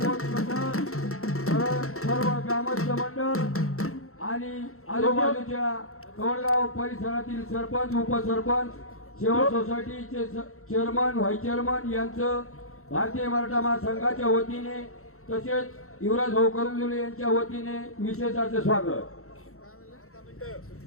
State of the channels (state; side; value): late; right; 0.63 ms